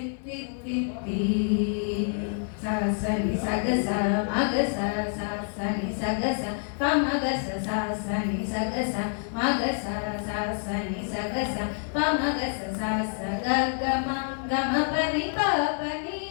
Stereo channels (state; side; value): silent; right; 57 dB below the other